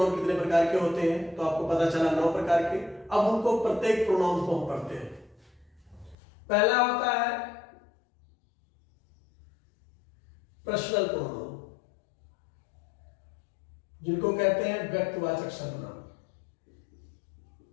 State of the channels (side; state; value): right; drops out; at 6.2 s